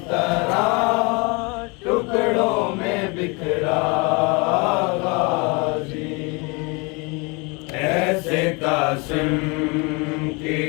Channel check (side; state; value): right; quieter; 29.5 dB